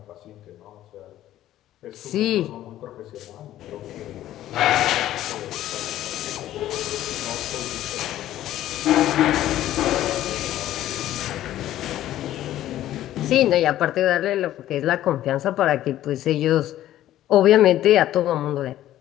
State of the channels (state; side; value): quieter; right; 13.3 dB